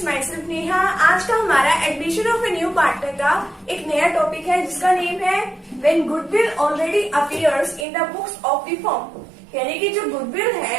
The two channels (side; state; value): left; drops out; at 7.9 s